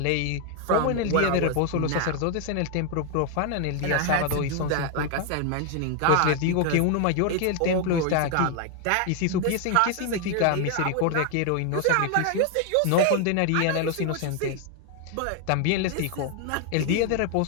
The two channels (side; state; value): both; different; correlation 0.00